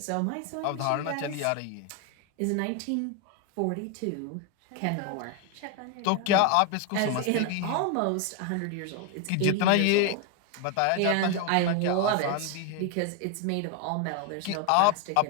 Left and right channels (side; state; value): both; different; correlation 0.01